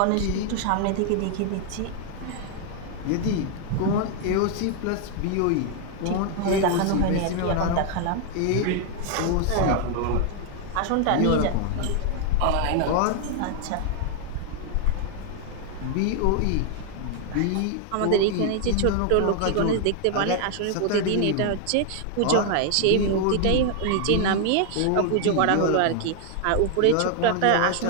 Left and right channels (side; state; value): both; different; correlation 0.00